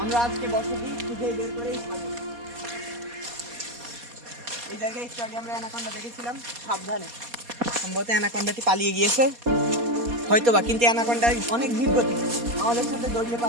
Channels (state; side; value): late; left; 4.2 ms